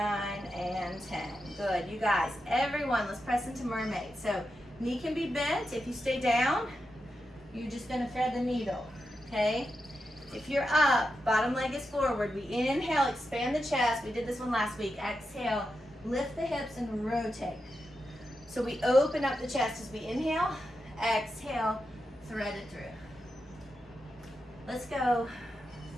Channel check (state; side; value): normal; both; correlation 0.88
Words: and 10. Good, you guys. Everyone, let's press into mermaid. So knee can be bent. If you stay down, you're just gonna thread the needle, okay? If you're up, bottom leg is forward. We inhale, expand the chest. We did this one last week. Exhale, lift the hips and rotate. So we open up the chest as we inhale, exhale, thread it through. Let's go.